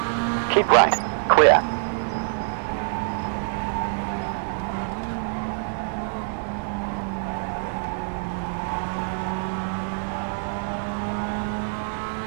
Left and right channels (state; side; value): silent; left; digital silence